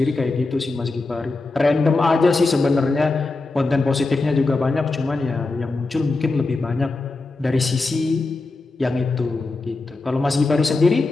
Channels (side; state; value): right; quieter; 3.5 dB